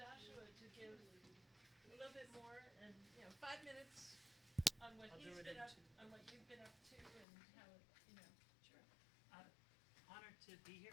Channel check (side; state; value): right; drops out; at 7.2 s